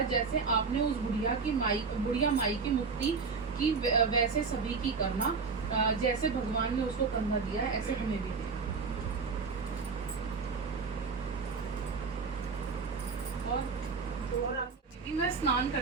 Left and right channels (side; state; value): left; quieter; 4.9 dB